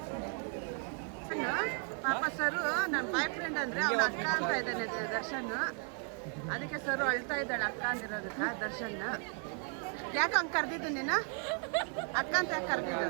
ಪಾಪ ಸರು ನನ್ನ ಬಾಯ್ ಫ್ರೆಂಡ್ ಅಂದರೆ ಅವಳ ಅಕ್ಕ ಅಂತ ಇದ್ದಾನೆ ದರ್ಶನ್ ಅದಕ್ಕೆ ಸರು ಅಳ್ತಾ ಇದ್ದಾಳೆ ಅಕ್ಕ ಅಂದಿರೋದಕ್ಕೆ ದರ್ಶನ್ ಯಾಕೆ ಹಂಗೆ ಕರೆದಿದ್ದು ನೀನು ಅಕ್ಕ ಅಂತ ಯಾಕೆ ಕರೆದಿದ್ದು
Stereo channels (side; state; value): left; quieter; 38.2 dB